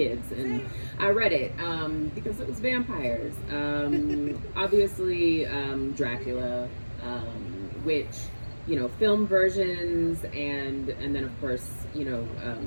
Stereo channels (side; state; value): both; inverted; correlation -1.00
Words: and I read it because it was vampires. Obviously Dracula, which film versions, and then of course